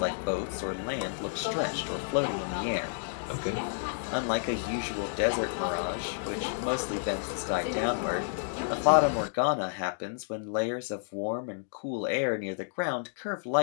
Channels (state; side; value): silent; right; digital silence